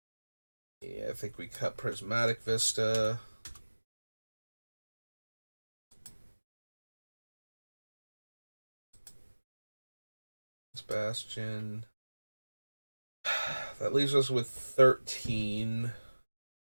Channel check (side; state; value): both; inverted; correlation -1.00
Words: Yeah, I think we cut Prismatic Vista. Bastion. That leaves us with 13.